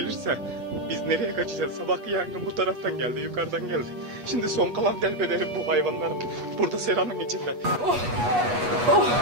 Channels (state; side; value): late; left; 8.3 ms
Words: biz nereye kaçacağız? Sabahki yangın bu taraftan geldi, yukarıdan geldi. Şimdi son kalan delbederim bu hayvanların. Burada seranın içinde. Oh, oh,